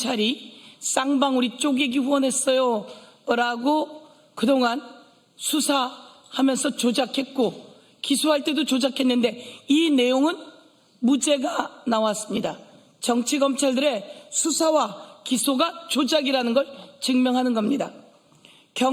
쌍방울이 쪼개기 후원했어요 라고 그동안 수사하면서 조작했고 기소할 때도 조작했는데 이 내용은 무죄가 나왔습니다. 정치 검찰들의 수사와 기소가 조작이라는 걸 증명하는 겁니다.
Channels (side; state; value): both; identical; correlation 1.00